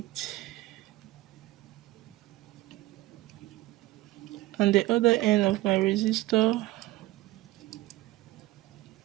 On the other end of my resistor,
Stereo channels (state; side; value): quieter; left; 17.7 dB